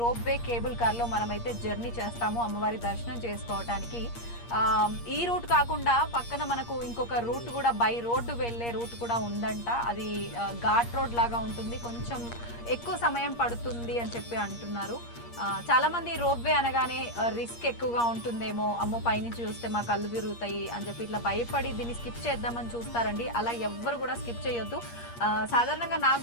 రోప్వే కేబుల్ కార్ లో మనమైతే జర్నీ చేస్తాము అమ్మవారి దర్శనం చేసుకోవటానికి. ఈ రూట్ కాకుండా పక్కన మనకు ఇంకొక రూట్ కూడా బై రోడ్డు వెళ్లే రూట్ కూడా ఉందంట. అది ఘాట్ రోడ్ లాగా ఉంటుంది, కొంచెం ఎక్కువ సమయం పడుతుంది అని చెప్పి అంటున్నారు. చాలా మంది రోప్వే అనగానే రిస్క్ ఎక్కువగా ఉంటుందేమో, అమ్మో పైనుంచి చూస్తే మా కళ్ళు తిరుగుతాయి అని చెప్పి ఇట్లా భయపడి దీన్ని స్కిప్ చేద్దామని చూస్తారండి. అలా ఎవ్వరు కూడా స్కిప్ చేయొద్దు. సాధారణంగా నాకు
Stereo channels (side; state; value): right; late; 8.5 ms